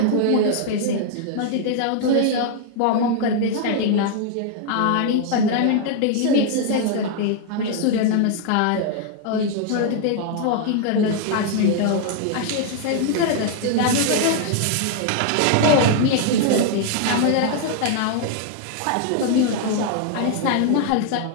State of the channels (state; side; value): different; both; correlation 0.00